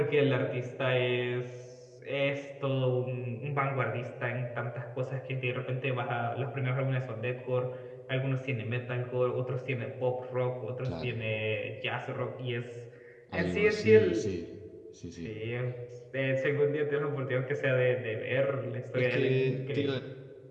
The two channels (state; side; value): identical; both; correlation 1.00